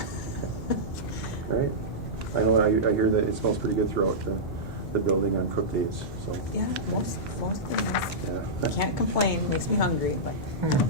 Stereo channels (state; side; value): normal; both; correlation -0.12